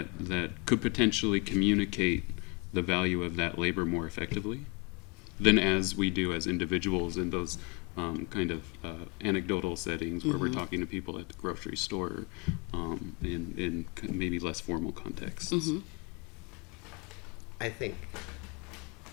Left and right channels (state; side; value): quieter; right; 30.8 dB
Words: could potentially communicate the value of that labor more effectively than as we do as individuals in those kind of anecdotal settings where we're talking to people at the grocery store in maybe less formal contexts? I think